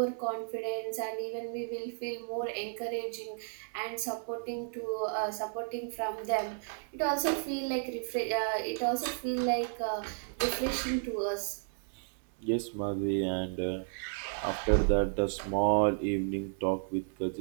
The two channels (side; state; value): left; silent; 56 dB below the other